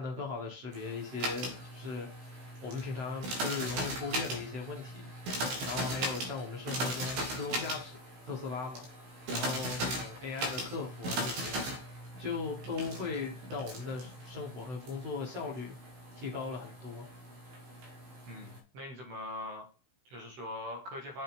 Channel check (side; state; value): left; late; 16 ms